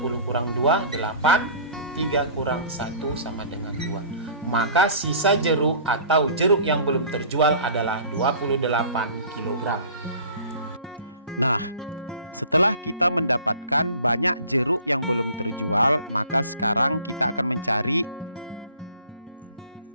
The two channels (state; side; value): inverted; both; correlation -0.46